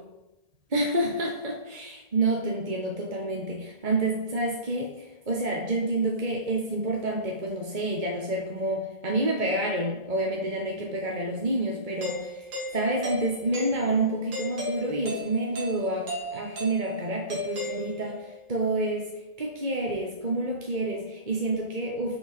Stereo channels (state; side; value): late; left; 1.8 ms